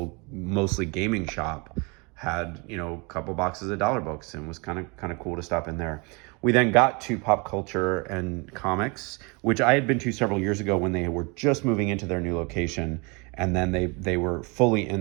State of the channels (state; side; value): quieter; left; 30.0 dB